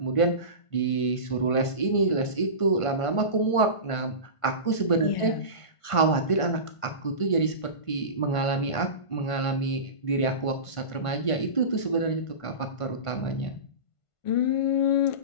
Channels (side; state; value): right; late; 1.5 ms